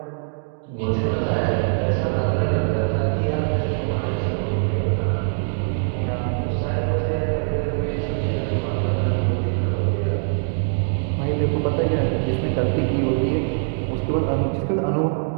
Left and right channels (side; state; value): left; silent; digital silence